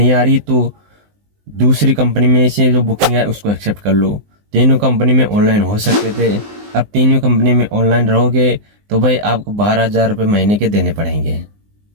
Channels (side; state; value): left; late; 19 ms